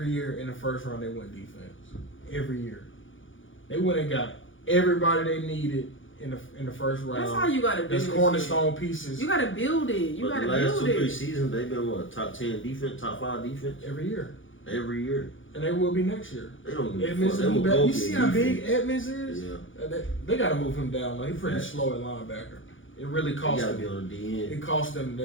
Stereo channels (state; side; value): late; right; 0.57 ms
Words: year in the first round they went defense. Every year, they went and got everybody they needed in the first round. That's how you gotta do That's it. cornerstone pieces You gotta build it. You But gotta the last build 2-3 it. seasons, they've been what, top 10 defense, top 5 defense every year, every year. and they will be next year. They don't give a Edmonds fuck. They will will be back. go You get see how big defense. Edmonds is? Yeah, They got to move him down. Though. He's pretty Right. slow at linebacker. It really he cost gotta him. be on the DN. It cost them